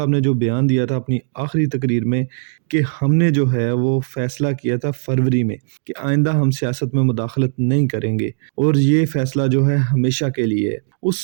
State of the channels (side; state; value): left; silent; digital silence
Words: ने जो बयान दिया था अपनी आखिरी तकरीर में कि हमने जो है वो फ़ैसला किया था फ़रवरी में कि आइंदा हम सियासत में मुदाखलत नहीं करेंगे और ये फ़ैसला जो है हमेशा के लिए है।